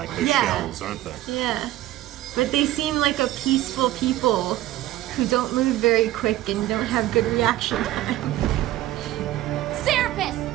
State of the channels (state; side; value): quieter; left; 15.3 dB